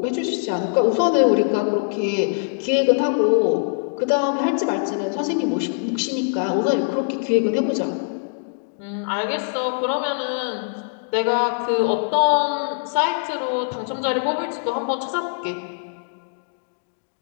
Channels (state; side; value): silent; right; digital silence